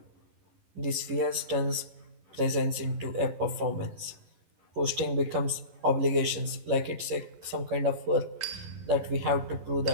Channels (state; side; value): late; left; 11 ms